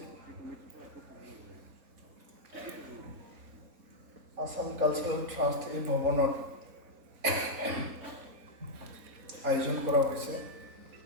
আসাম কালচাৰেল ট্ৰাষ্ট এই ভৱনত আয়োজন কৰা হৈছে।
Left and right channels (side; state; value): left; late; 3.9 ms